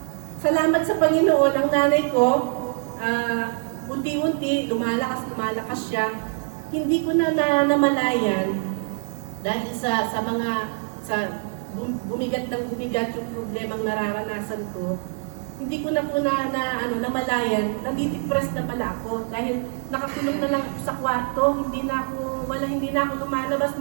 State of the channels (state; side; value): silent; left; digital silence